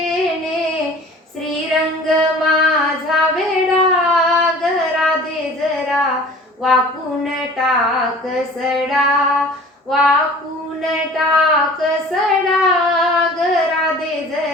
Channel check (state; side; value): normal; both; correlation 0.45